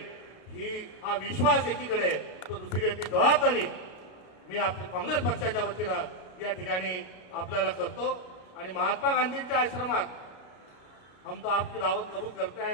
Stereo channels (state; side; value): late; right; 32 ms